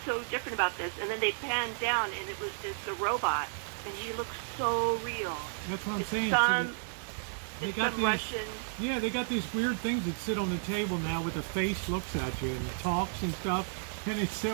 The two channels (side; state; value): left; silent; 56 dB below the other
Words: so different about this? And then they panned down, and it's a robot, and he looks so real. That's what I'm saying. They got these, Russian. Yeah, they got these weird things that sit on the table now with the face looks at you and talks and stuff, and it's